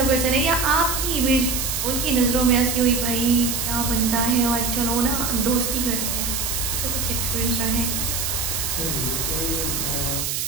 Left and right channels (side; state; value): right; noise; hiss, 1 dB below the sound